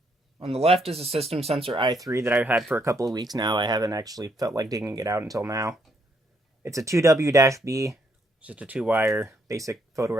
On the left is a system sensor i3 that I've had for a couple of weeks now. I haven't actually felt like digging it out until now. It's a 2W-B, just a 2-wire basic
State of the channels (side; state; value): both; normal; correlation 0.73